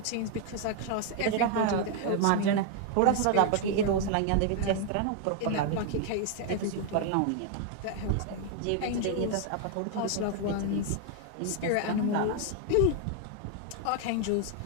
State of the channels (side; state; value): both; different; correlation 0.00